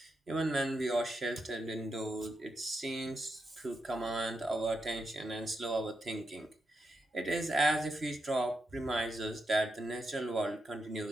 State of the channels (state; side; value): normal; both; correlation 0.85